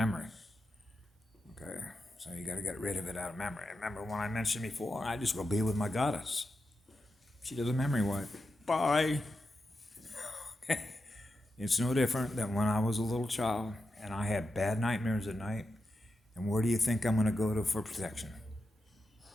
Okay, so you got to get rid of it out of memory. Remember when I mentioned before, I just go be with my goddess. She does a memory wipe. Bye. Okay. It's no different than when I was a little child and I had bad nightmares at night. And where do you think I'm going to go to for protection?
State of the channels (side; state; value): both; normal; correlation 0.88